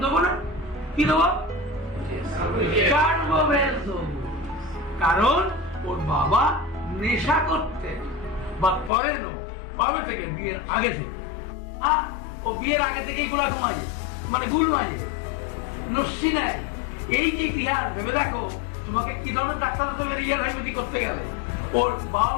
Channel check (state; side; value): drops out; right; at 8.9 s